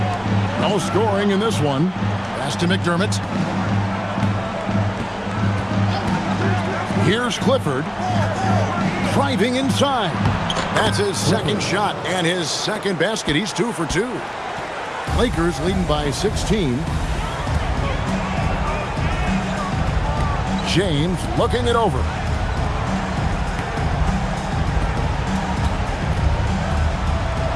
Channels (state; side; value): identical; both; correlation 1.00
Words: No scoring in this one. Pass to McDermott. Here's Clifford. Driving inside. That's his second shot and his second basket. He's 2 for 2. Lakers leading by 16. James looking it over.